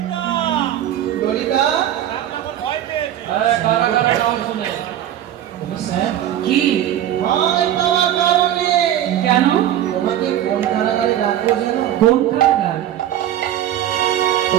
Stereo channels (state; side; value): quieter; left; 11.7 dB